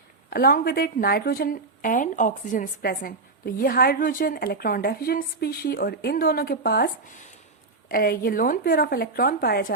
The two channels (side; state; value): left; quieter; 3.7 dB